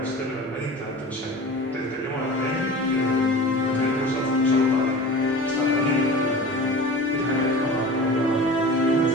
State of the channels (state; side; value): normal; both; correlation 0.36